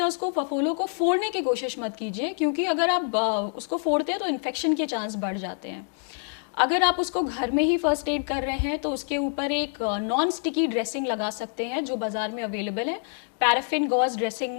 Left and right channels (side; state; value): right; silent; 61 dB below the other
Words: को, फफोलों को फोड़ने की कोशिश मत कीजिए क्योंकि अगर आप उसको फोड़ते हैं तो इन्फेक्शन के चांस बढ़ जाते हैं। अगर आप उसको घर में ही फर्स्ट एड कर रहे हैं तो उसके ऊपर एक नॉन स्टिकी ड्रेसिंग लगा सकते हैं जो बाज़ार में अवेलेबल है। पैराफिन गॉज